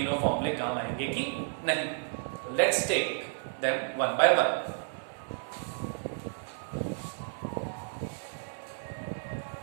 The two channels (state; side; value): silent; left; digital silence